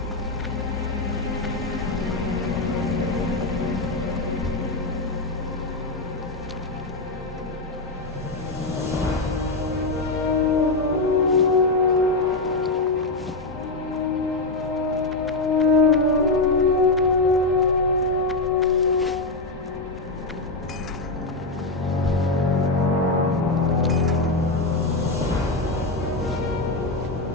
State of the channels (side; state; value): right; quieter; 3.1 dB